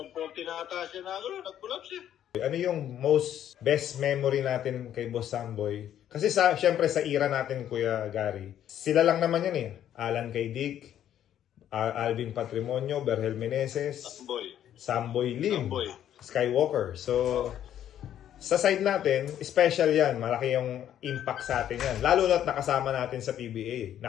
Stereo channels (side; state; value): right; quieter; 10.7 dB